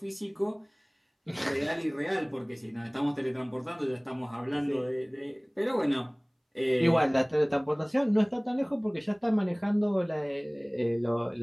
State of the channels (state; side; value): identical; both; correlation 1.00